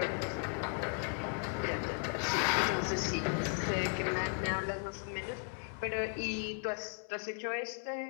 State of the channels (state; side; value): quieter; right; 39.2 dB